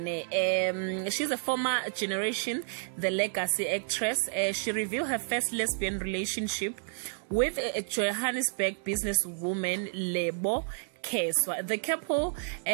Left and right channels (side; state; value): left; silent; digital silence